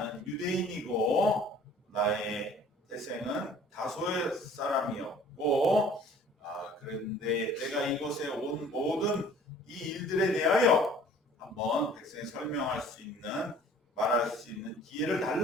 유대인이고 나의 태생은 다소의 사람이었고 그런데 내가 이곳에 온 모든 이 일들에 대하여 한번 백성에 설명할 수 있는 말할 수 있는 기회를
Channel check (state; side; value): normal; both; correlation 0.52